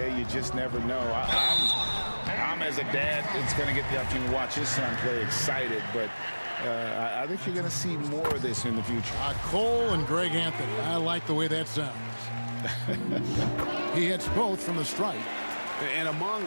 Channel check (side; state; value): both; inverted; correlation -1.00